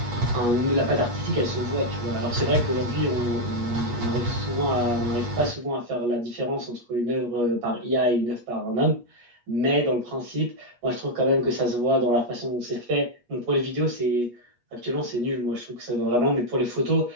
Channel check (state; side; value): late; left; 8.3 ms